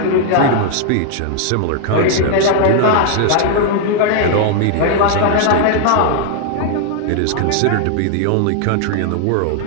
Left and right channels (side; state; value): both; different; correlation 0.00